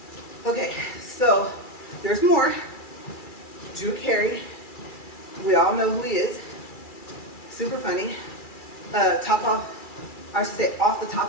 Okay, so there's more. Drew Carey, we all know who he is. Super funny. Off the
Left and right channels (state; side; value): late; right; 2.3 ms